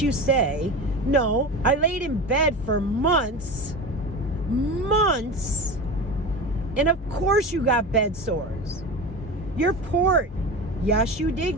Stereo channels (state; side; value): normal; both; correlation 0.27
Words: say, no, I laid in bed for months, and of course you got bed sores. Your port, yes, you did